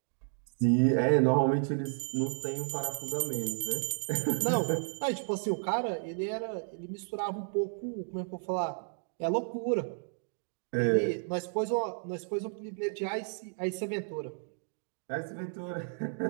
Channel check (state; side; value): silent; left; 56 dB below the other